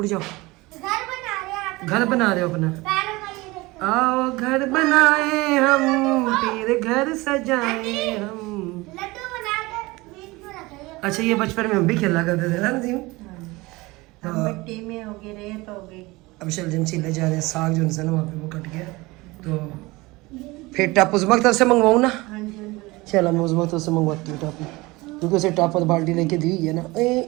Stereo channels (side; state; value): left; quieter; 22.1 dB